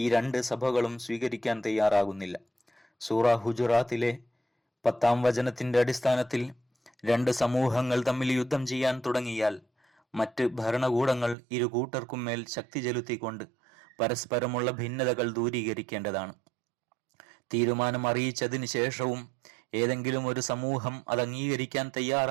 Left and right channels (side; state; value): left; drops out; at 11.4 s